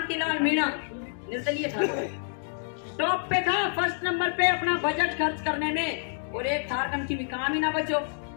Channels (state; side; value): silent; right; digital silence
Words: मीणा निर्दलीय था, टॉप पे था, फर्स्ट नंबर पे अपना बजट खर्च करने में, और एक थार कम की भी काम ही ना बचो,